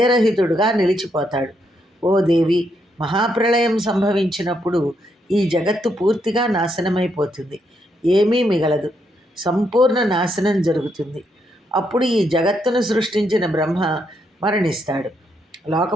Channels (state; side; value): normal; both; correlation 0.77